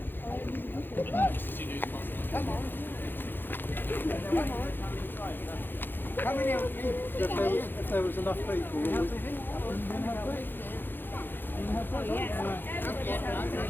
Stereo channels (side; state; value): right; late; 0.097 ms